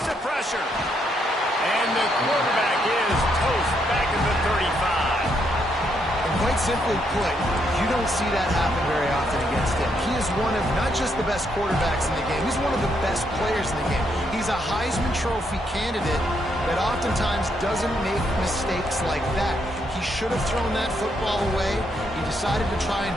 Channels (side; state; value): both; normal; correlation 0.76